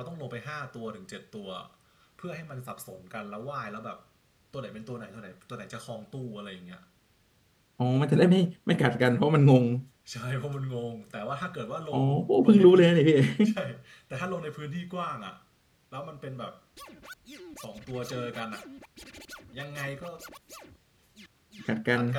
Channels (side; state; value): both; identical; correlation 1.00